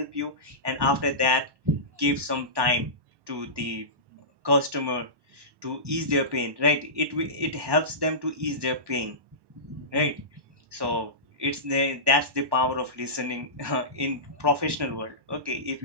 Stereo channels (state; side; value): late; left; 1.1 ms